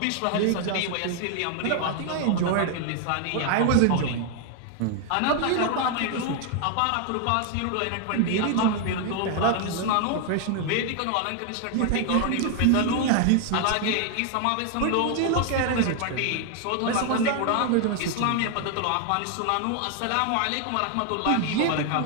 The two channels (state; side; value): different; both; correlation 0.00